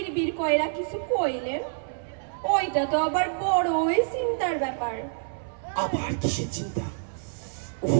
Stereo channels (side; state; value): left; silent; 60 dB below the other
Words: কইরা কিছু কইলেন। ওইটা তো আবার বড়ই চিন্তার ব্যাপার। আবার কিসের চিন্তা?